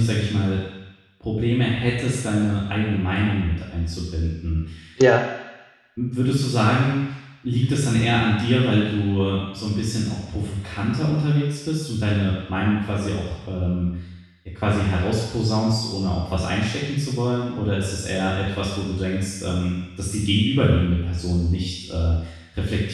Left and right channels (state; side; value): identical; both; correlation 1.00